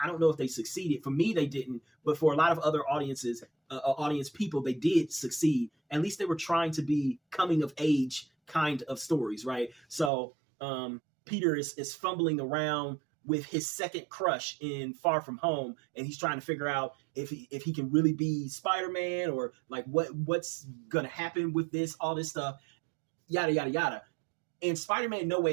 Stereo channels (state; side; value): drops out; left; at 10.1 s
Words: don't know if they succeeded. For me, they didn't. But for a lot of other audience people, they did succeed. At least they were trying to be coming of age kind of stories, right? So Peter is fumbling around with his second crush in Far From Home, and he's trying to figure out if he can really be Spider-Man, or like what's gonna happen with this, all this stuff, yada yada yada. And Spider-Man No